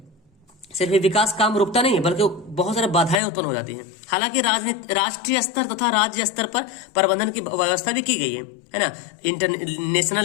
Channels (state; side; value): drops out; right; at 3.2 s